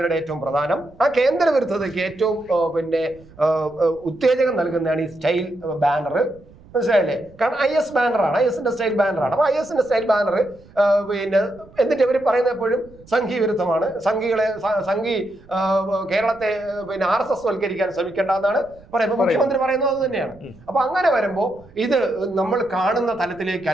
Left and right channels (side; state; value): right; noise; rumble, 24 dB below the sound